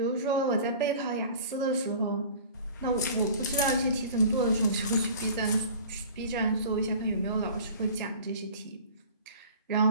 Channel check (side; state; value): both; inverted; correlation -0.43